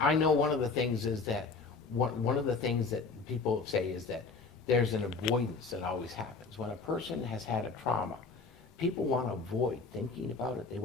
I know one of the things is that, one of the things that people say is that there's an avoidance that always happens. When a person has had a trauma, people want to avoid thinking about it. They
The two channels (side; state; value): right; quieter; 4.3 dB